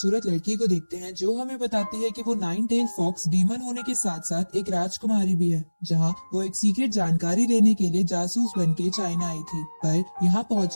लड़की को देखते हैं जो हमें बताती है कि वो नाइन टेल फॉक्स डीमन होने के साथ साथ एक राजकुमारी भी है, जहां वो एक सीक्रेट जानकारी लेने के लिए जासूस बन के चाइना आई थी। पर यहाँ पहुँच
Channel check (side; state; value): both; inverted; correlation -1.00